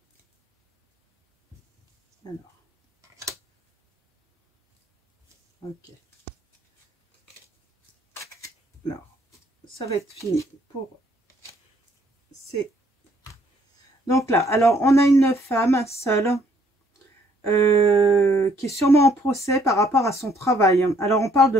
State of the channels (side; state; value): both; normal; correlation 0.66